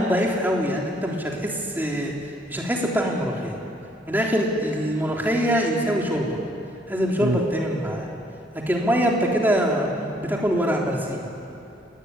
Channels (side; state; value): both; normal; correlation 0.65